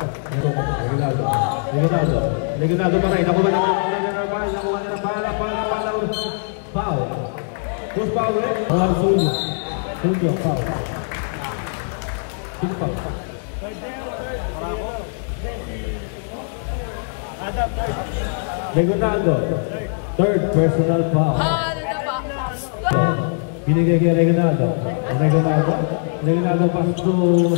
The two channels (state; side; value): silent; right; digital silence